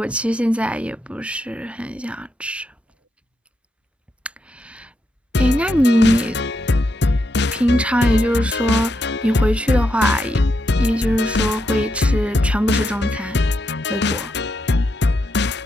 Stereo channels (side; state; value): both; normal; correlation 0.82